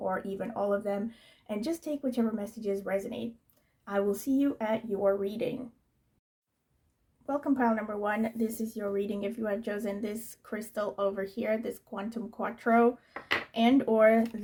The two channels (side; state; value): both; identical; correlation 1.00